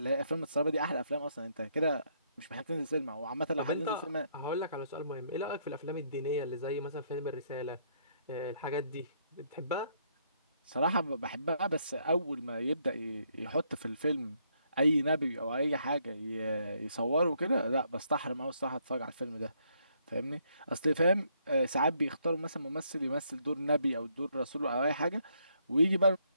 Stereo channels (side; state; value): both; inverted; correlation -0.72